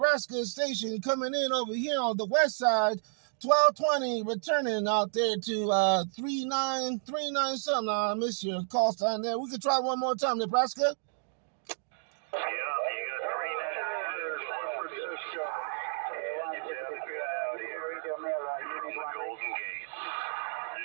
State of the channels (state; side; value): silent; left; digital silence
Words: station coming in over here on the west side, 1220, returning out there to 3939 something. I miss your call sign there. We could try one more time, Nebraska. Yeah, you got 39. Golden Gate.